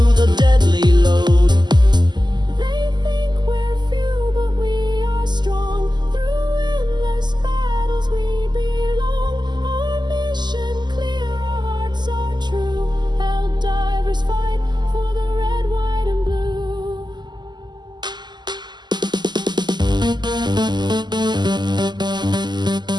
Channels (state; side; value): late; left; 0.21 ms